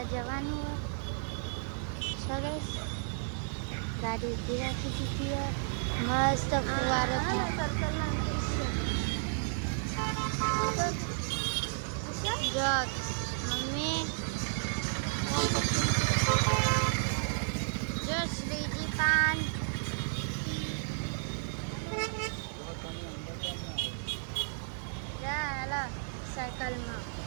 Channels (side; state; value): left; silent; digital silence